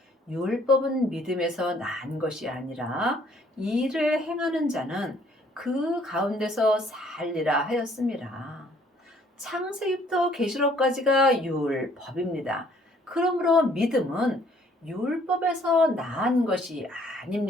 율법은 믿음에서 난 것이 아니라 이를 행하는 자는 그 가운데서 살리라 하였습니다. 창세기부터 계시록까지가 율법입니다. 그러므로 믿음은 율법에서 난 것이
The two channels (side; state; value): both; normal; correlation 0.61